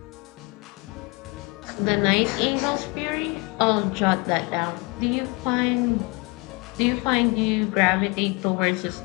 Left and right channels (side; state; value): right; quieter; 28.2 dB